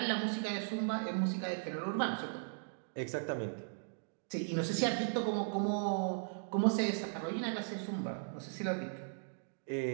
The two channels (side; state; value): left; silent; digital silence